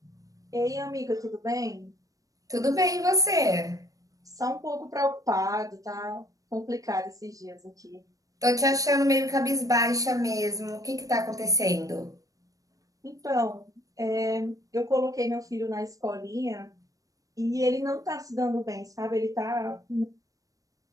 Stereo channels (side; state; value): left; late; 0.17 ms